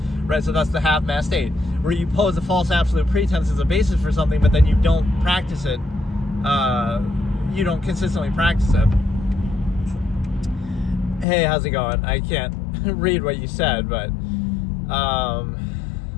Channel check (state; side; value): drops out; right; at 11.2 s